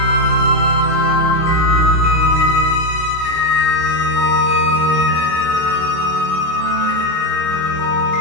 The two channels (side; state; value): right; late; 20 ms